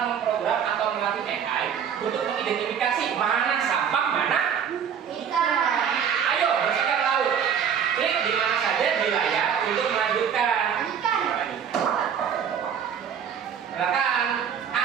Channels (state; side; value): quieter; left; 7.8 dB